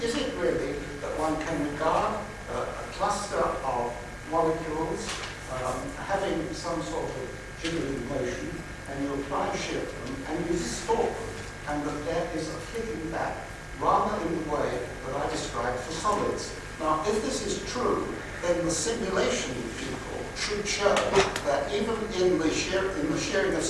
is it really that one can regard a cluster of molecules having some sort of jiggling motion, and you apply shear to them, and you distort them, and that there is a flicking back, rather in the way that I described for solids? Now, if this is true, then the simulation people should show that even in the shearing of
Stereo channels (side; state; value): both; identical; correlation 1.00